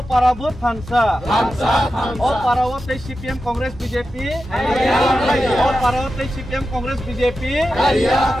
Parabut Thansa O Parawote CPM Congress BJP O Parawote CPM Congress BJP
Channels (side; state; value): both; normal; correlation 0.91